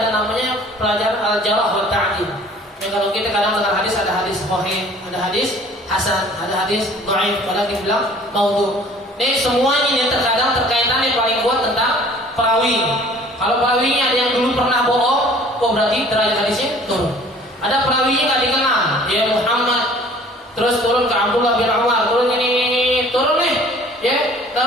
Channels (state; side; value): normal; both; correlation 0.51